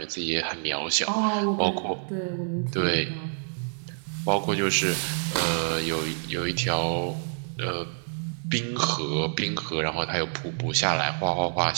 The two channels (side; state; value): left; silent; digital silence